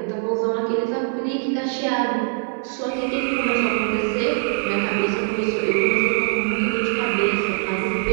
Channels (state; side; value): silent; left; 63 dB below the other